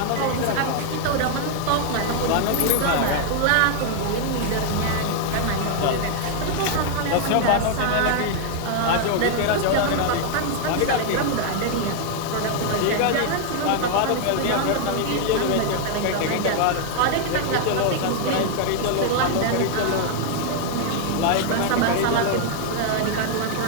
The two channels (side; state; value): both; different; correlation 0.00